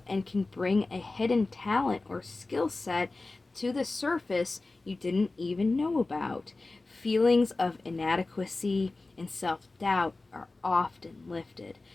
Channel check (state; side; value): quieter; right; 3.3 dB